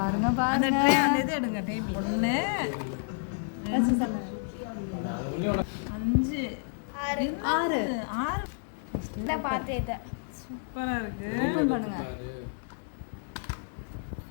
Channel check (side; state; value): right; silent; digital silence